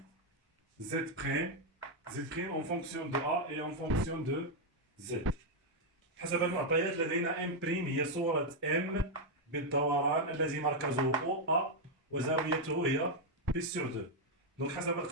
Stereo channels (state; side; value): normal; both; correlation 0.00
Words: Z' en fonction de A et en fonction de Z. حسب المعطيات لدينا M' هي صورة M بالدوران الذي مركزه O A وزاويته هي P sur 2. Donc حسب